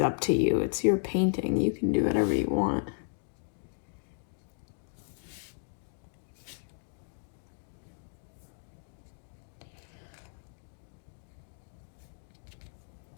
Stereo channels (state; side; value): silent; right; digital silence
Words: up to you. It's your painting. You can do whatever you want.